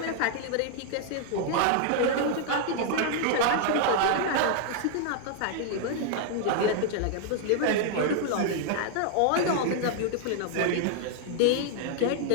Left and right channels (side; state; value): both; different; correlation 0.00